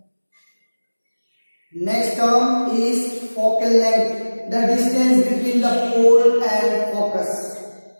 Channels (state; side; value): inverted; both; correlation -1.00